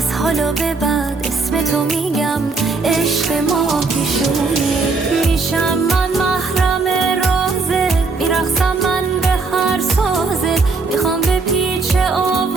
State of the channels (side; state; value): left; quieter; 4.1 dB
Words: حالا به بعد اسم تو میگم عشق ما پیشونی. میشم من